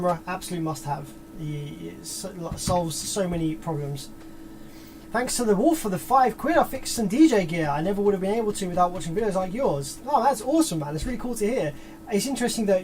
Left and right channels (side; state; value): both; identical; correlation 1.00